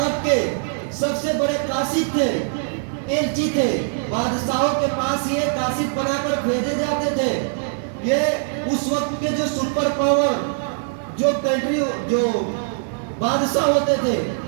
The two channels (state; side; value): silent; left; 59 dB below the other